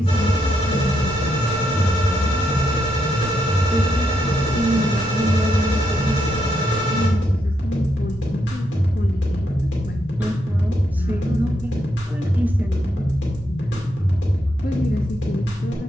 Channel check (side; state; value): both; normal; correlation 0.80